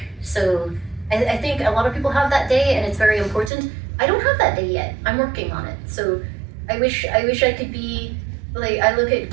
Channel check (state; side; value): drops out; left; at 3.5 s